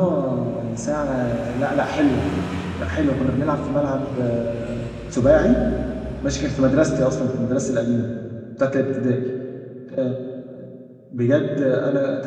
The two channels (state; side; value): identical; both; correlation 1.00